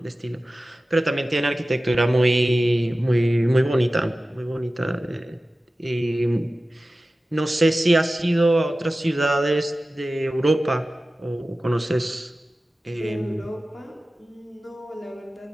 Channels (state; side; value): normal; both; correlation 0.96